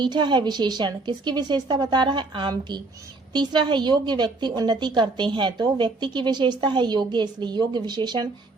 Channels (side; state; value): left; quieter; 3.4 dB